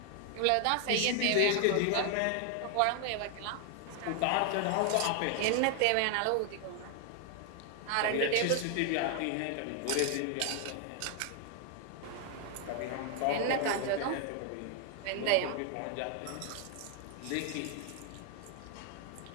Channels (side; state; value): both; different; correlation 0.00